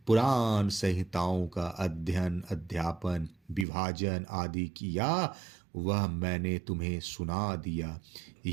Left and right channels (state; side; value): drops out; left; at 3.7 s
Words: पुराण संहिताओं का अध्ययन, अध्यापन, विभाजन आदि किया, वह मैंने तुम्हें सुना दिया।